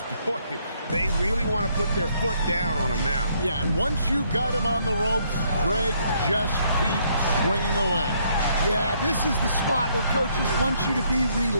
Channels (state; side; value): inverted; both; correlation -0.70